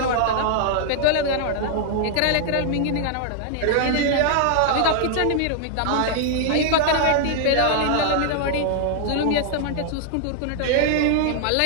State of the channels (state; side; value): different; both; correlation 0.00